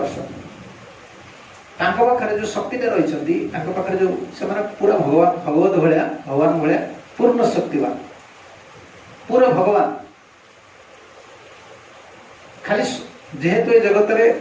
पाखे जो शक्ति रही पाखे जो से पूरा भगवान भगवत भाया भगवान भाया पूर्ण शक्तिवान पूरा भगवान खाली जेहेतु ये जगत रे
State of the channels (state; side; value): identical; both; correlation 1.00